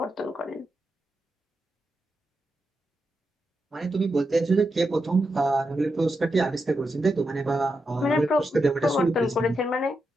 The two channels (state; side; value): normal; both; correlation 0.86